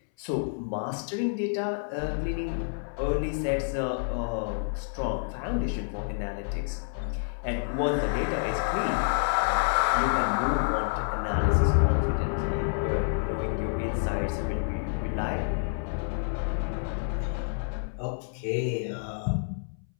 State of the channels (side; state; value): right; silent; 59 dB below the other